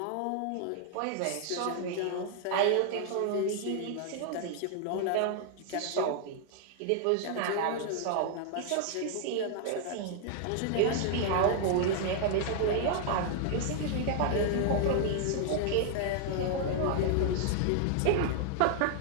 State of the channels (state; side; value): different; both; correlation 0.00